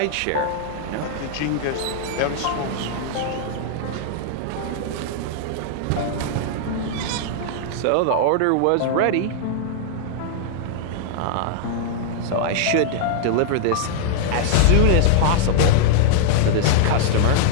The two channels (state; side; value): different; both; correlation -0.01